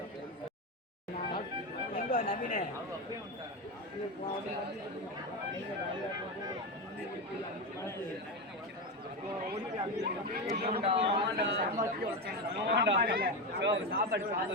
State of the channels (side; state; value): both; normal; correlation 0.15